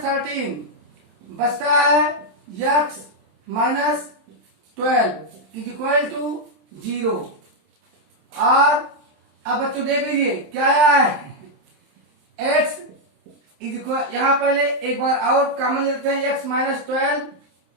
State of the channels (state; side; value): late; left; 27 ms